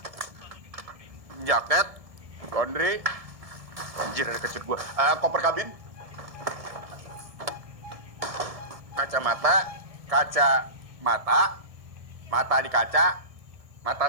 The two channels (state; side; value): late; left; 1.6 ms